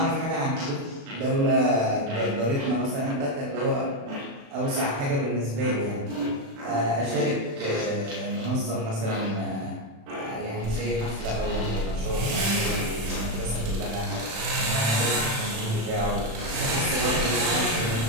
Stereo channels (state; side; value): late; left; 36 ms